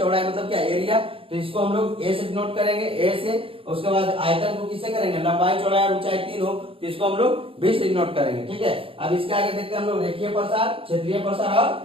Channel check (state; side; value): late; left; 0.27 ms